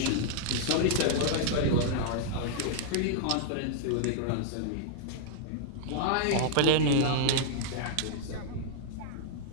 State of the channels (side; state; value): both; different; correlation -0.01